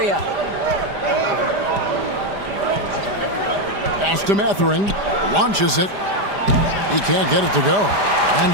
Pass to Mathurin. Launches it. He can't get it to go.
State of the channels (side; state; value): left; late; 5.0 ms